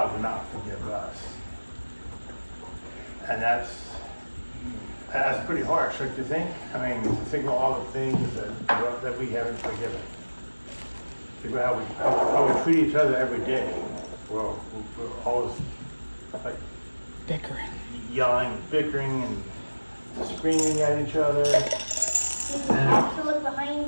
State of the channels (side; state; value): both; inverted; correlation -1.00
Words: will not forgive us. And that's pretty harsh, don't you think? I mean, think of all the things that we haven't forgiven. Think about how we treat each other every day. Well, we're always like Bickering. yelling, bickering, and screaming at each other. Did you have to look